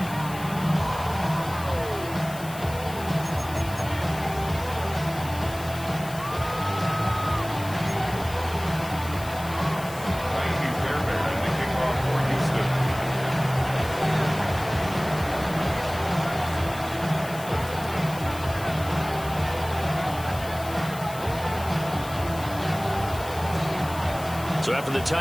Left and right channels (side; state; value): left; noise; hiss, 15 dB below the sound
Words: So after the